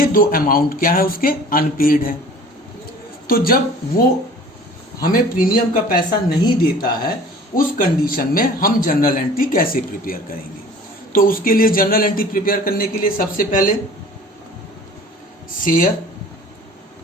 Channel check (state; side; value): normal; both; correlation 0.46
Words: 2 अमाउंट क्या है उसके, अनपेड है। तो जब वो हमें प्रीमियम का पैसा नहीं देता है, उस कंडीशन में हम जनरल एंट्री कैसे प्रिपेयर करेंगे। तो उसके लिए जनरल एंट्री प्रिपेयर करने के लिए सबसे पहले शेयर